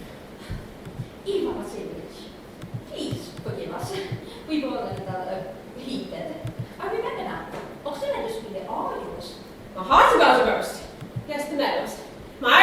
Ivan Vasilievich, please forgive us. We were a little heated. I remember now. Och, sen är det skulle avgöras. My heart's about to burst. Yes, the meadows. My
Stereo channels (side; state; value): both; identical; correlation 1.00